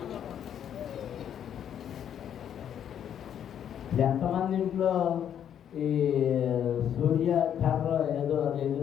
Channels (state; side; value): quieter; right; 9.3 dB